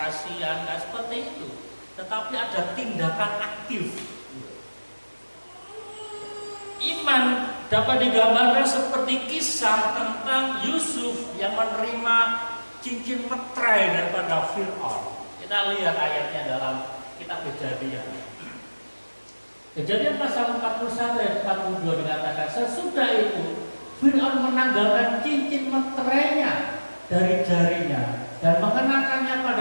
nggak seperti itu. Tetapi ada tindakan aktif. Iman dapat digambarkan seperti kisah tentang Yusuf yang menerima cincin meterai daripada Fir'aun. Kita lihat ayatnya dalam kitab Kejadian. Kejadian pasal 41 ayat 42 dikatakan, sesudah itu Fir'aun menanggalkan cincin meterainya dari jarinya dan mengenakannya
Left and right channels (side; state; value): both; inverted; correlation -1.00